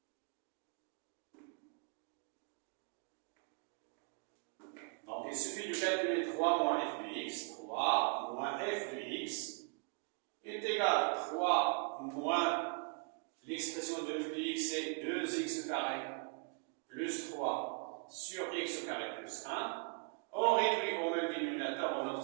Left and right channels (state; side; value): quieter; left; 36.8 dB